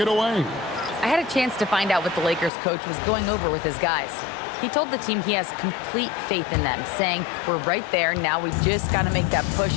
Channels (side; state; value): right; drops out; at 2.5 s